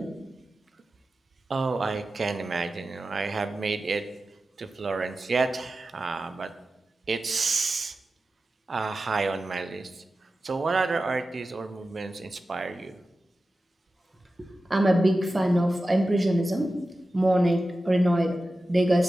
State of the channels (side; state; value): both; normal; correlation 0.94